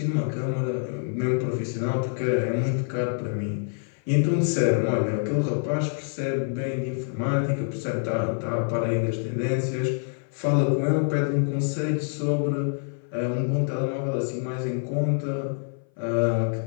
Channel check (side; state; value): right; silent; 57 dB below the other